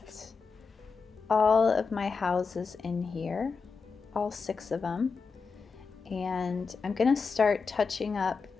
all of my houses in here, all 6 of them, and I'm going to start touching up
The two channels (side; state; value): right; quieter; 5.0 dB